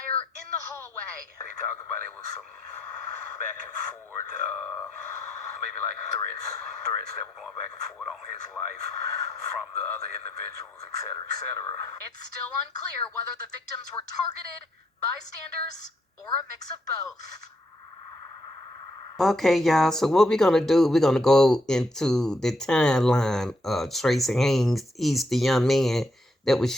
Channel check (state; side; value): normal; both; correlation 0.76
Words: in the hallway. They talked about it was some back and forth, maybe like threats that were going back and forth on his life from the other individuals, et cetera, et cetera. It's still unclear whether the victims were targeted, bystanders, or a mix of both. Okay, y'all. So what we're gonna do? We're gonna go into the timeline. Tracy Haynes, he's the young man that was